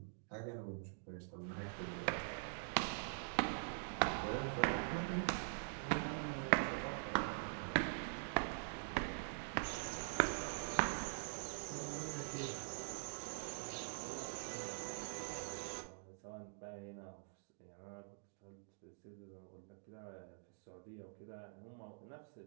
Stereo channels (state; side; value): silent; left; digital silence